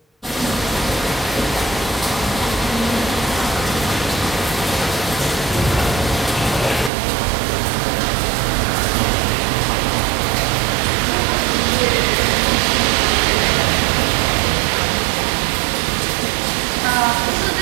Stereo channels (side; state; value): left; drops out; at 6.9 s